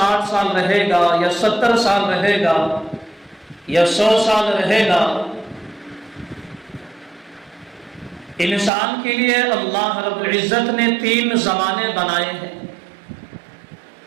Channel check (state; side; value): drops out; left; at 8.7 s